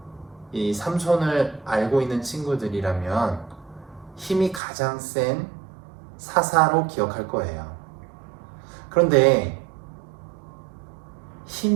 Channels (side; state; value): left; drops out; at 4.6 s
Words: 이 삼손을 알고 있는 친구들이라면 힘이 가장 센 사사로 기억할 거예요. 그런데